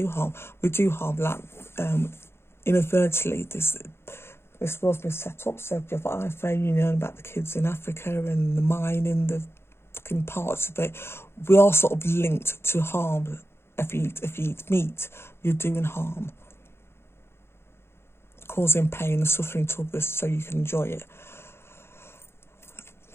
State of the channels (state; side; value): late; right; 0.12 ms